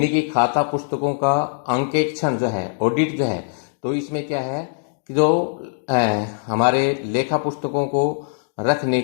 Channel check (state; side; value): silent; right; digital silence